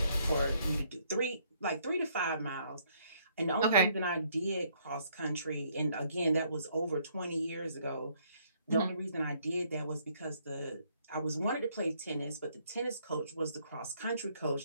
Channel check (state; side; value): inverted; both; correlation -0.68